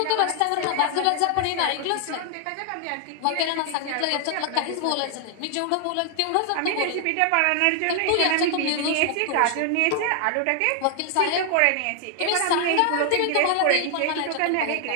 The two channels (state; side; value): different; both; correlation 0.00